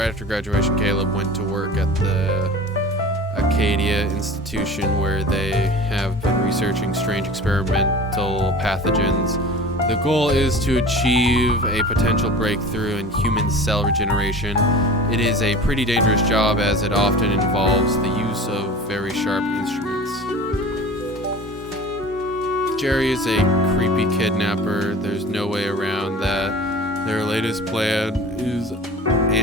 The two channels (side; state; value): both; normal; correlation 0.39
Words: after graduation, Caleb went to work at the Acadia Institution where they have been researching strange experimental pathogens. The goal is to achieve a potential breakthrough in human cell regeneration. It is a pretty dangerous job as it often involves the use of very sharp instruments. Jerry is a creepy kidnapper. There's no way around that. Their latest plan is